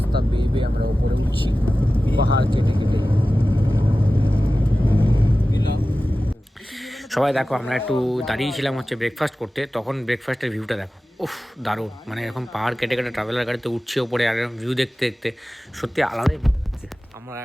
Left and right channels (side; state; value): both; normal; correlation 0.95